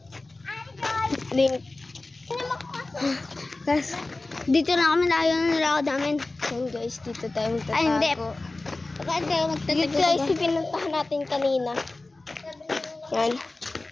link. Guys, dito na kami tayo ng nilakad namin. Yan guys, dito tayo magtatago. Ay, hindi. Bakit kayo magtatago? Dito guys, pinuntahan natin kanina. Yan.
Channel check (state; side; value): quieter; right; 3.1 dB